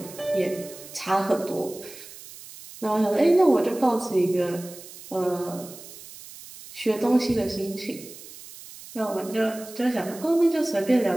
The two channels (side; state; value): right; noise; hiss, 16 dB below the sound